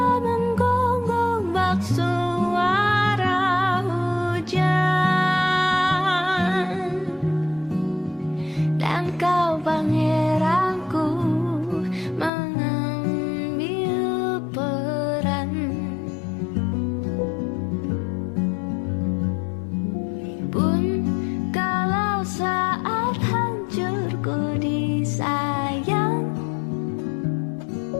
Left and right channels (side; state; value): right; drops out; at 12.3 s